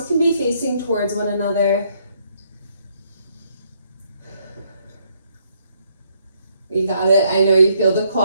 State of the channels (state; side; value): inverted; both; correlation -0.71